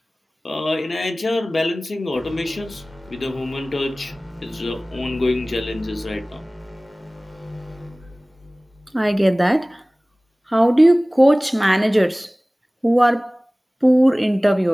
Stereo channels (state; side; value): normal; both; correlation 0.98